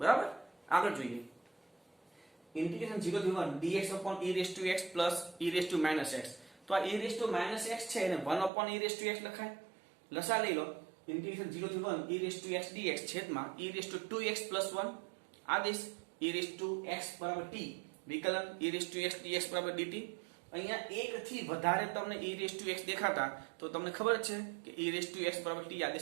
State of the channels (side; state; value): left; drops out; at 8.5 s